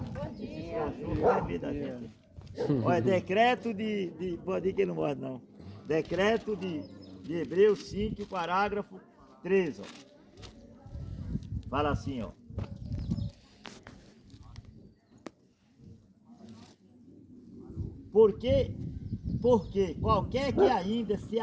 Olha, decreto de pode ir que não morre não. Decreto de Hebreus 5, parágrafo 13. Ó. Fala assim, ó. Porque qualquer que ainda se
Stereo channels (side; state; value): both; identical; correlation 1.00